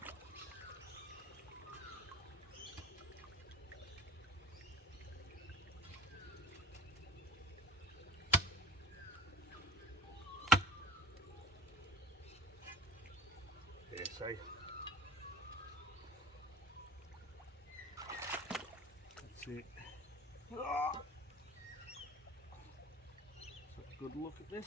Yeah, see? That's it. Oh. So a good look at this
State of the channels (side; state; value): both; normal; correlation 0.40